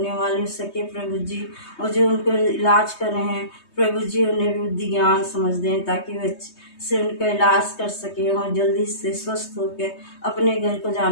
वाले हो सके प्रभु जी। और जो उनको इलाज कर रहे हैं प्रभु जी उन्हें बुद्धि ज्ञान समझ दें ताकि वे से उनका इलाज कर सके और जल्दी से स्वस्थ होकर अपने घर को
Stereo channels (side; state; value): right; late; 3.2 ms